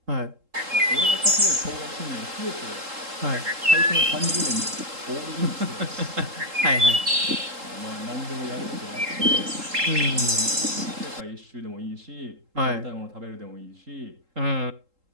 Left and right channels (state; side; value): late; left; 3.8 ms